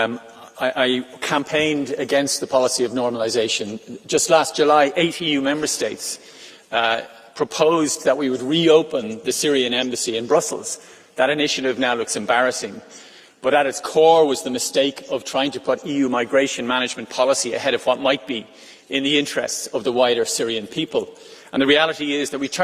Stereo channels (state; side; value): identical; both; correlation 1.00